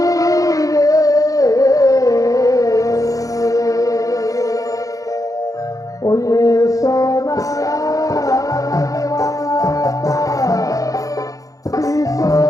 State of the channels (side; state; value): right; late; 0.17 ms